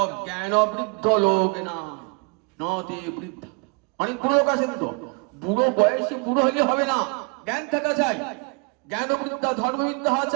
জ্ঞানবৃদ্ধ লোক না, নতে বৃদ্ধ। অনেক বুড়ো লোক আছেন, তো বুড়ো বয়সে বুড়ো হলে হবে না, জ্ঞান থাকা চাই, জ্ঞানবৃদ্ধা ধর্মবিদ্যা হওয়া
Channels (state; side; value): quieter; left; 33.8 dB